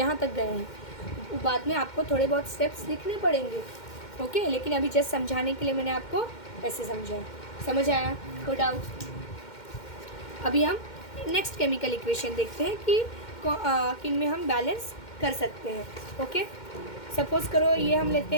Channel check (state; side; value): late; right; 2.1 ms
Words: तक गए हैं, बाद में आपको थोड़े बहुत स्टेप्स लिखने पड़ेंगे, ओके। लेकिन अभी जस्ट समझाने के लिए मैंने आपको ऐसे समझा, समझ आया? कोई डाउट? अभी हम नेक्स्ट केमिकल इक्वेशन देखते हैं कि किन में हम बैलेंस कर सकते हैं। ओके, सपोज करो ये हम लेते